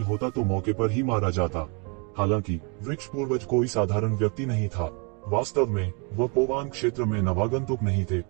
होता तो मौके पर ही मारा जाता। हालांकि वृक्ष पूर्वज कोई साधारण व्यक्ति नहीं था। वास्तव में वह पोवान क्षेत्र में नवागंतुक नहीं थे,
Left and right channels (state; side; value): quieter; left; 34.1 dB